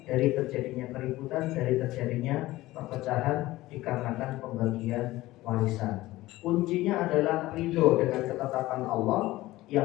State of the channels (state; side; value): quieter; right; 17.6 dB